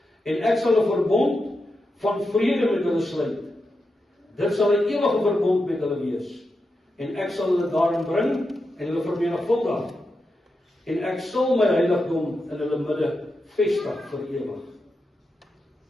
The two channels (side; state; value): both; normal; correlation 0.88